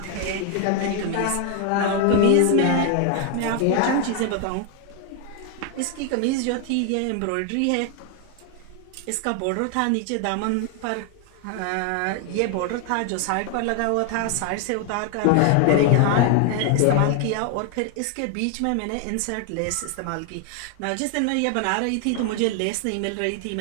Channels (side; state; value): both; different; correlation 0.00